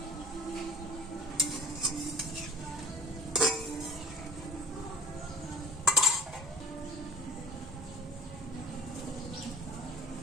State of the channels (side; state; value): both; normal; correlation 0.47